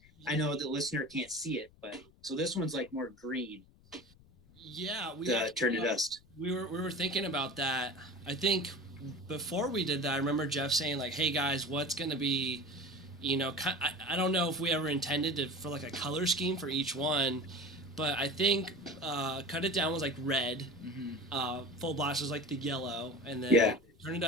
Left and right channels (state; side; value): noise; left; rumble, 27 dB below the sound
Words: I know the listener can't see it, but so this one's like more green. Yeah, Turn to Dust. We were thinking about that. I think before we did that, I remember Jeff saying like, "Hey guys, what's gonna be, you know, I don't know if we ever intended for like a color scheme for each one, but I think Cut It Down was like red, Full Blast was like the yellow, and then Turn to